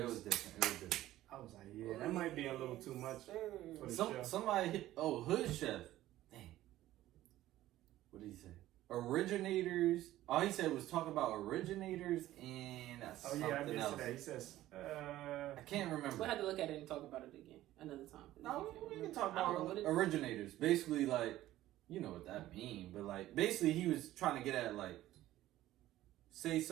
It was different. I was like, "Yeah, that might be a little too much for the show." Somebody hit. Oh, Hood Chef. Dang. What did he say? Originators. All he said was talk about originators and Oh something yeah, I did else. see that. He says, I can't remember. We'll have to look at it and talk about it again another time. No, we can talk I don't know about what it- originators. Basically, like, you know what that mean, but like, basically, he was trying to get at like, say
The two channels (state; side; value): quieter; left; 14.8 dB